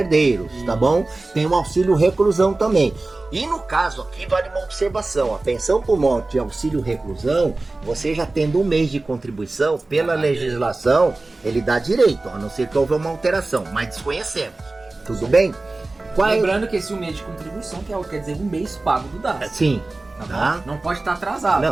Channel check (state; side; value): quieter; left; 3.2 dB